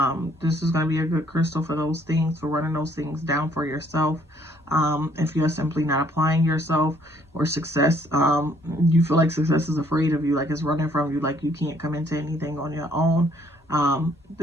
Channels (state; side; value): normal; both; correlation 0.64